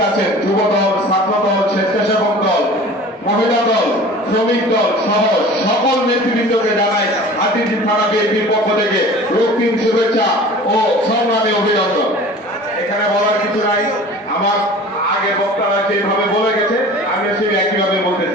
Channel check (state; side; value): normal; both; correlation 0.42